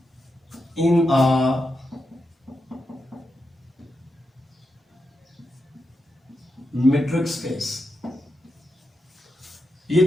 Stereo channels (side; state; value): both; normal; correlation 0.87